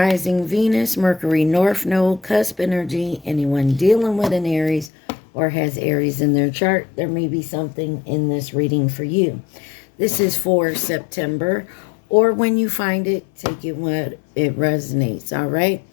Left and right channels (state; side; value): drops out; right; at 4.9 s